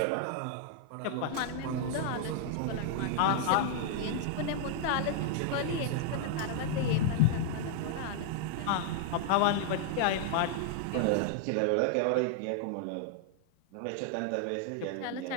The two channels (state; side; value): different; both; correlation 0.00